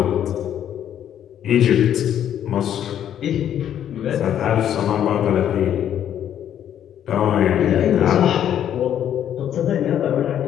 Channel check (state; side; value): quieter; right; 10.1 dB